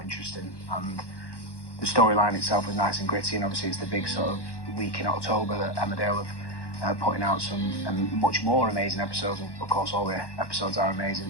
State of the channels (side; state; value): right; late; 1.1 ms